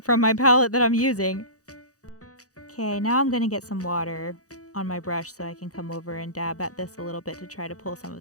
from my palette that I'm using. Okay, now I'm gonna get some water on my brush so I can come over and dab at this a little bit to try to pull some of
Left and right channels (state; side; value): late; right; 0.66 ms